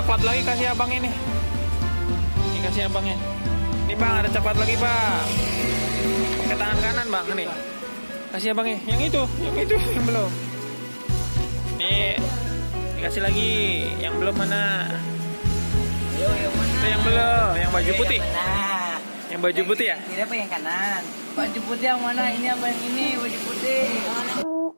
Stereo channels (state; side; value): inverted; both; correlation -1.00